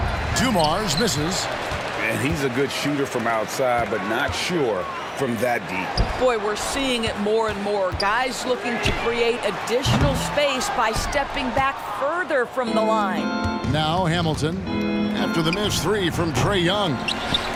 Dumars misses. And he's a good shooter from outside, but not sure from that deep. Boy, we're seeing it more and more. Guys looking to create additional space by stepping back further from the line. Now Hamilton after the missed 3 from Trae Young.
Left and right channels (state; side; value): identical; both; correlation 1.00